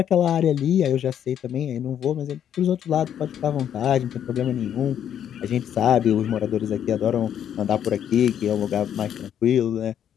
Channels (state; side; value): quieter; right; 9.5 dB